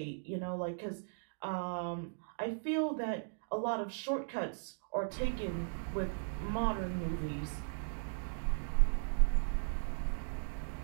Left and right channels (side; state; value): left; silent; digital silence